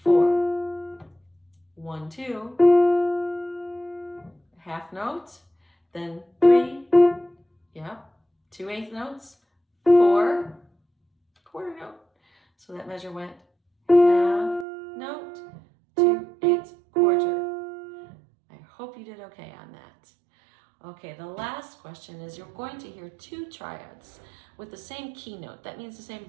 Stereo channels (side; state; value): left; drops out; at 14.7 s